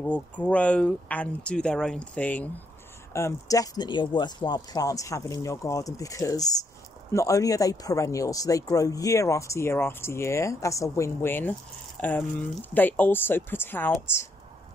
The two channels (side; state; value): both; normal; correlation 0.75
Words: grow and do their own thing. Definitely a worthwhile plant having in your garden because not only are they perennial, so they grow year after year after year. That's a win-win. They also put out,